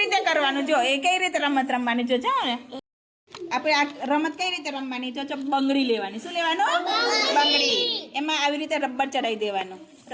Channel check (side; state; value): both; identical; correlation 1.00